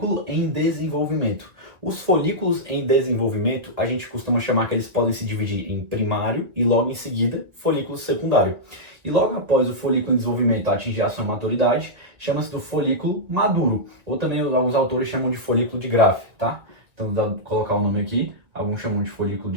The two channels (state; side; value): late; left; 1.9 ms